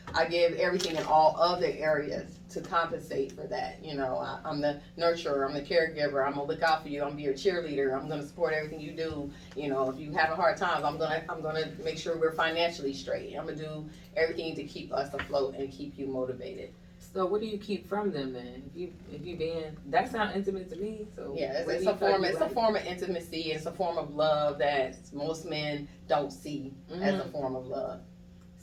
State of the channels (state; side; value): identical; both; correlation 1.00